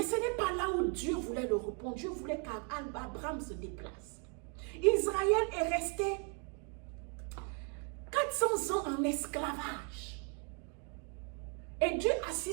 ce n'est pas là où Dieu voulait le répondre. Dieu voulait qu'Abraham se déplace. Israël est resté 400 ans en esclavage. Et Dieu a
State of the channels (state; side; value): quieter; left; 38.5 dB